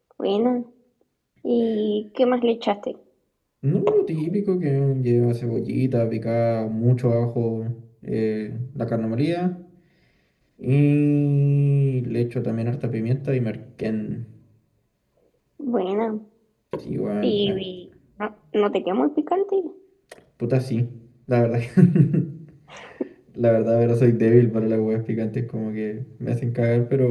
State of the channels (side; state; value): both; identical; correlation 1.00